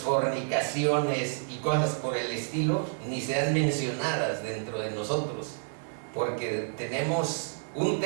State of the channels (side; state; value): left; silent; 58 dB below the other